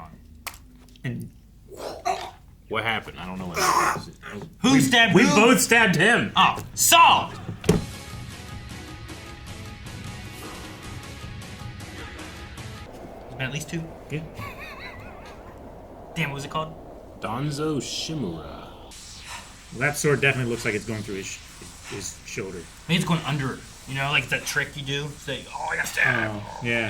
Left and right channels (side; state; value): both; identical; correlation 1.00